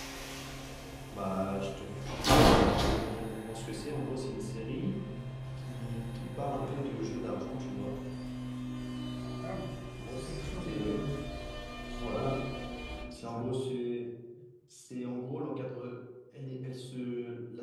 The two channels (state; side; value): identical; both; correlation 1.00